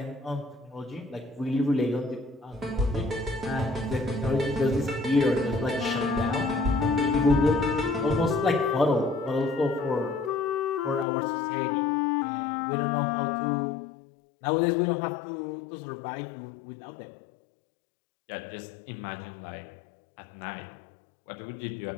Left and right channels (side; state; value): right; drops out; at 11.1 s